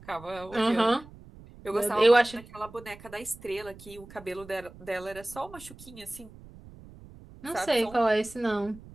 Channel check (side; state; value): right; noise; rumble, 19 dB below the sound